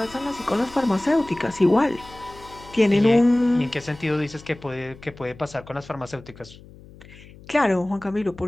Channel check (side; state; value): left; noise; hum, 21 dB below the sound